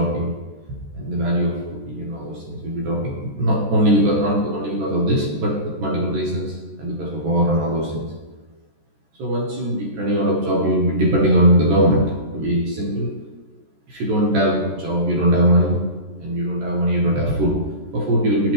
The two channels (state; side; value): late; left; 14 ms